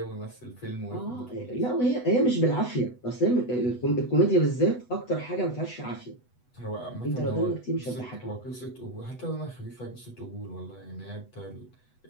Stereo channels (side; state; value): right; late; 8.1 ms